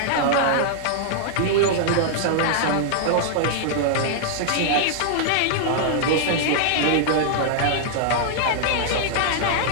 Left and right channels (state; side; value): different; both; correlation -0.01